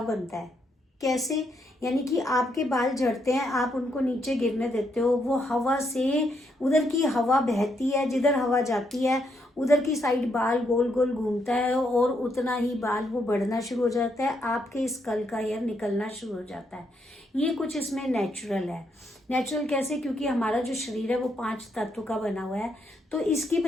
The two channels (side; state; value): both; normal; correlation 0.77